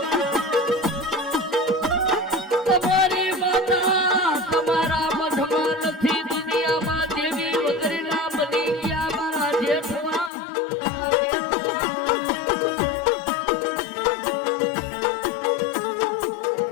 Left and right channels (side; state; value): right; drops out; at 10.3 s